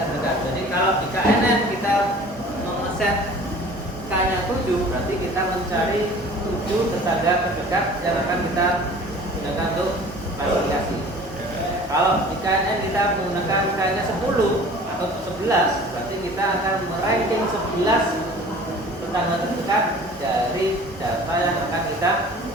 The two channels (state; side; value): normal; both; correlation 0.45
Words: Jadi kalau di KNN kita mengeset K-nya 7, berarti kita mencari 7 tetangga terdekat yang akan kita gunakan untuk klasifikasi. Kalau di KNN kita menggunakan K-nya 10 atau 11, berarti kita akan meranking 11 tetangga terdekat dari data yang akan kita